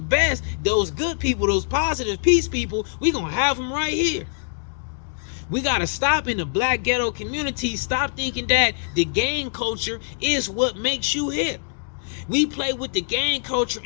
those good people, those positive peace people. We gonna have them right here. We got to stop in the black ghetto community. Stop thinking that the gang culture is what makes you hip. We play with the gang culture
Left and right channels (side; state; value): right; silent; digital silence